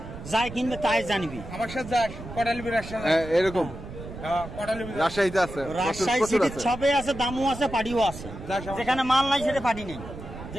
যাই কিনবে তাই জানবি। আমার সাথে যাস কটালিবি রাজশাহী এরকম। রাজশাহীতে আছে, রাজশাহী সিটি সবে আছে, দামও আছে, পাটিও আছে। যেখানে মাল নাই সেটা পাটি নেই,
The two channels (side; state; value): right; noise; rumble, 12 dB below the sound